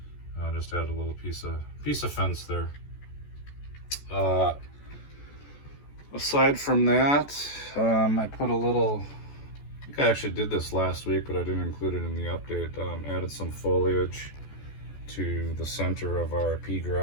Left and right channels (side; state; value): right; late; 14 ms